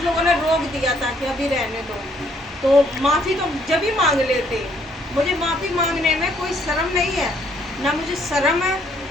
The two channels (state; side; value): normal; both; correlation 0.67